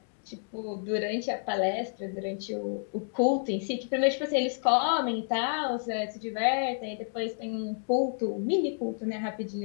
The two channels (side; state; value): right; silent; digital silence